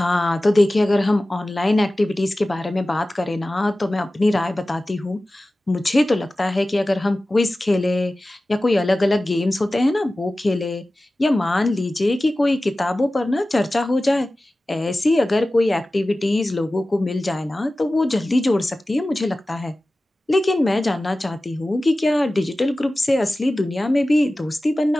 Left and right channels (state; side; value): normal; both; correlation 0.96